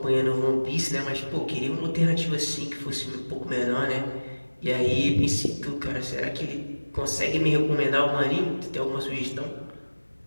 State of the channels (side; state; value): both; inverted; correlation -1.00